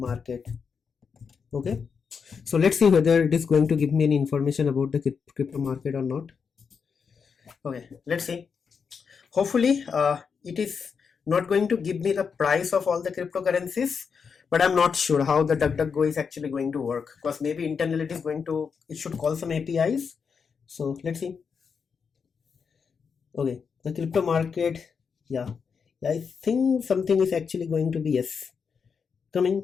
Okay, so let's see whether it is going to give me any information about the crypto market or not. Okay, let's see. Hopefully it is not going to give me the price of all the cryptocurrencies, but I'm not sure how the DuckDuckGo is actually going to work, because maybe internally it should call some APIs. So let's see. Okay, the crypto market, yeah, I think something is actually going to be yes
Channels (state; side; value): quieter; right; 6.0 dB